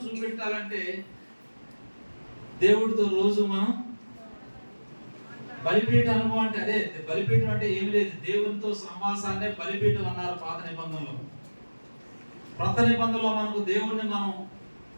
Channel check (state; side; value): inverted; both; correlation -1.00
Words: చూపెట్టాలంటే దేవుడితో రోజు మనం బలిపీఠ అనుభవం అంటే అదే. బలిపీఠం అంటే ఏమి లేదు, దేవునితో సమాసాన్నే బలిపీఠం అన్నారు పాత నిబంధనలో. కొత్త నిబంధనలో మనకు దేవుణ్ణి మనం